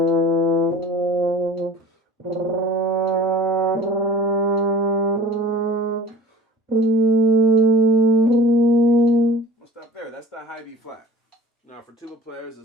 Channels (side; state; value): both; normal; correlation 0.44